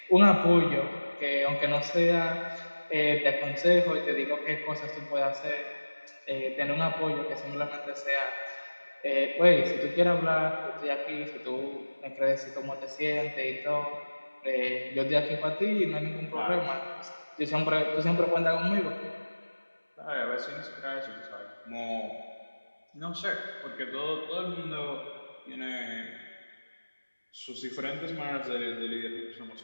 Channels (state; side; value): inverted; both; correlation -1.00